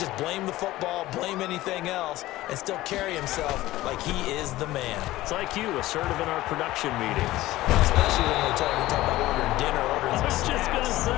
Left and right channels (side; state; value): right; quieter; 16.8 dB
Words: blame the football, blame anything else, and still carry himself like he is the man. It's like you, assertive in our production meetings. Especially when we talk about ordering dinner, ordering I was just going to